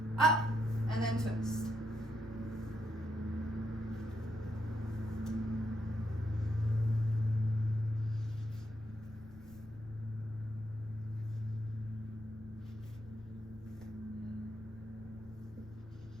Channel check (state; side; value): noise; left; rumble, 19 dB below the sound